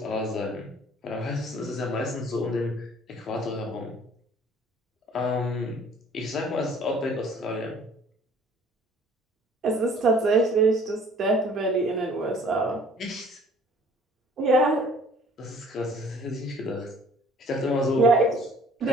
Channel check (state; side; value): normal; both; correlation 0.54